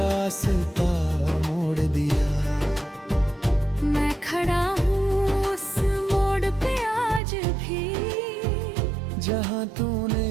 मोड़ दिया। मैं खड़ा हूँ उस मोड़ पे आज भी, जहाँ तूने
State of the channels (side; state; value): left; drops out; at 7.2 s